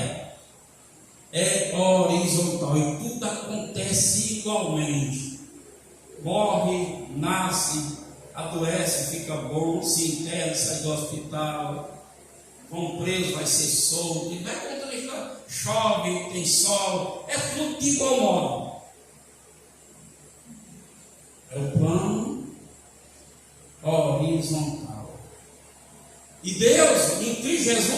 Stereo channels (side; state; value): both; identical; correlation 1.00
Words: é horizontal, e tudo acontece igualmente. Morre, nasce, adoece, fica bom, se interna, sai do hospital, vão preso, vai ser solto, e vai contando a história. Chove, tem sol, é tudo de igual modo. É o plano horizontal. E Deus, em Cristo